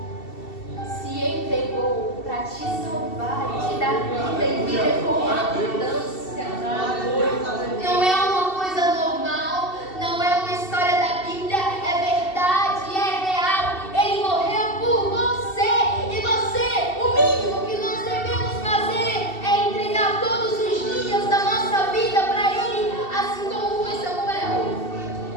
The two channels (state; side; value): late; right; 2.7 ms